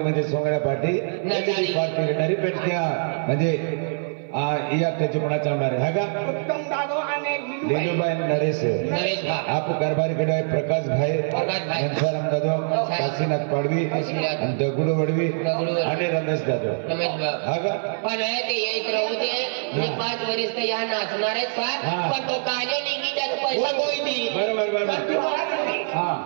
म्हणजे सोंगड्या पाठी नजारी. पाठी घेणारी पेटत्या म्हणजे या त्याची कोणा चालणार आहे हा का उत्तम दादो आणि लीलूबाई नरेश नरेश भा आप कारभारी कडे प्रकाश भाई प्रकाश भाई. घनसाराम दादो काशीनाथ पाडवी काशीनाथ. आणि दगडू वडवी दगडू वडवी. आणि रमेश दादो रमेश भा हा का पण आहे ते येत राहू दे मी 5 वर्ष तर या नाचणार आहेत हा. सर पण तो काले निघी त्याचा पैसा कोई दी बरोबर बरोबर हा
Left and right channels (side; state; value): left; silent; 58 dB below the other